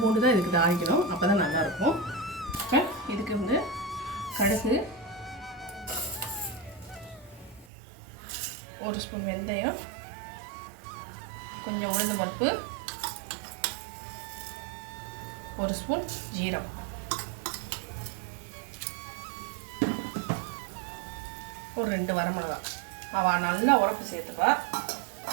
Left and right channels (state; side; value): drops out; left; at 7.7 s